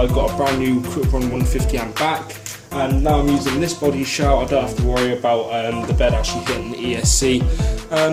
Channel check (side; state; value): both; identical; correlation 1.00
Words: got a brand new Quick Run 150 amp back. And now I'm using this body shell. I don't have to worry about the bed actually hitting the ESC.